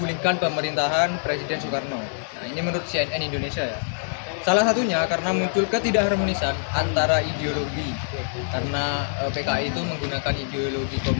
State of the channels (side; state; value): right; silent; 62 dB below the other